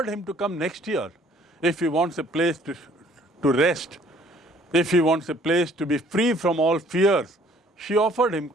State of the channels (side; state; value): both; normal; correlation 0.58